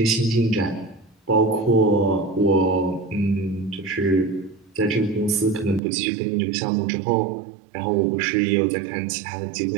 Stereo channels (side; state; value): left; drops out; at 5.8 s